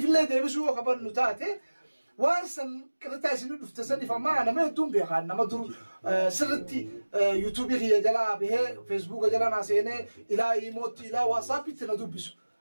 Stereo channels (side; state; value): both; inverted; correlation -1.00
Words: deebisuu yoo qabannu taate waan san qirtaa isin dhufte saniif ammaa nama hedduun beekaan nama dur sirritti yuutuubii kiyya jalaa bahee feesbuuka jala naa seenee ilaa iimootti ilaa waasaappitti na dubbisu